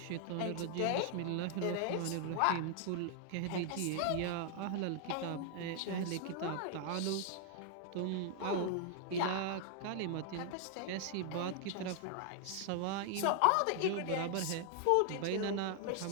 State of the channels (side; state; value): both; different; correlation 0.00